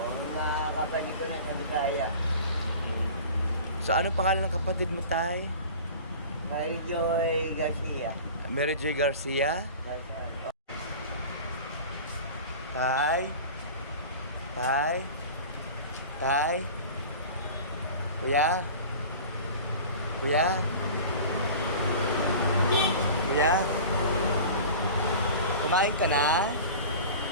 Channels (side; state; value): both; inverted; correlation -0.38